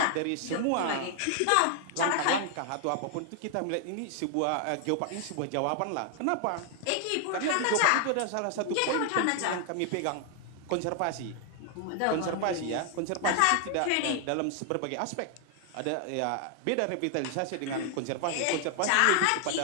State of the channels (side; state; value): both; different; correlation 0.00